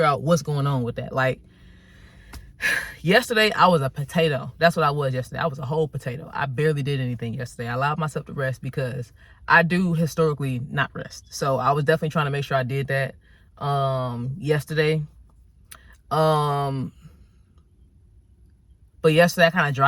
out what's going on with that. Like, yesterday, I was a potato. That's what I was yesterday. I was a whole potato. I barely did anything yesterday. I allowed myself to rest because I do historically not rest. So I was definitely trying to make sure I did that yesterday. But yesterday, I kind of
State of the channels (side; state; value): both; identical; correlation 1.00